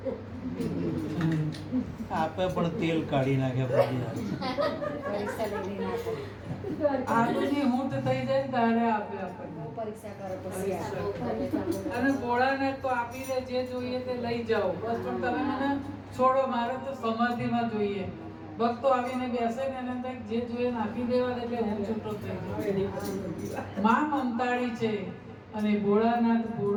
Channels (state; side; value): identical; both; correlation 1.00